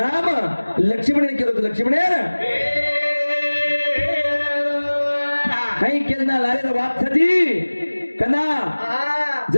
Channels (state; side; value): inverted; both; correlation -1.00